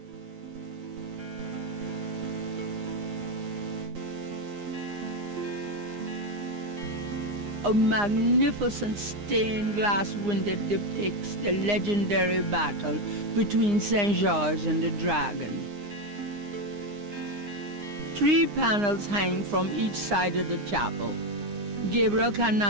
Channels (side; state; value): left; late; 9.7 ms